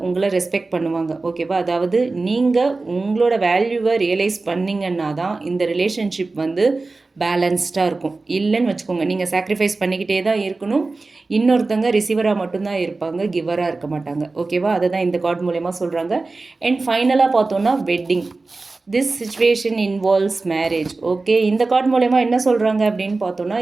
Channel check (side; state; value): left; quieter; 3.5 dB